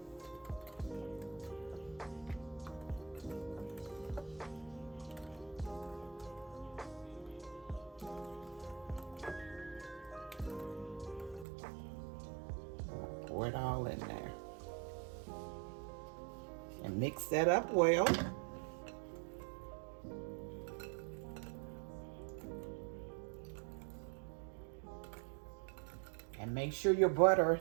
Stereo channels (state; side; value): drops out; left; at 11.5 s